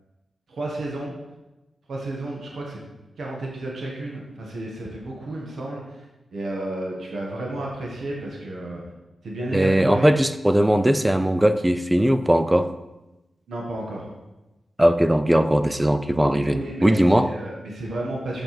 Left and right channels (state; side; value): normal; both; correlation 0.97